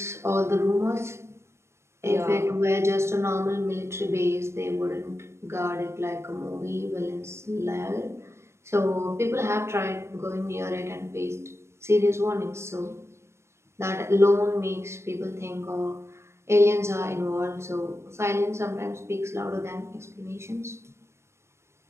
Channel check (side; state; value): left; late; 0.13 ms